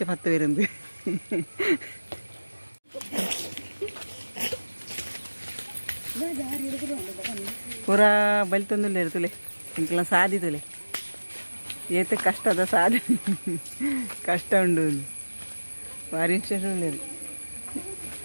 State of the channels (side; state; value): both; inverted; correlation -1.00